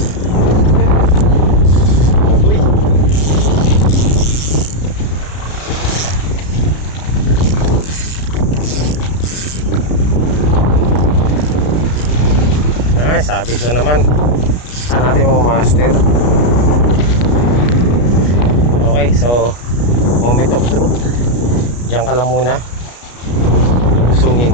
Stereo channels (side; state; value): right; late; 33 ms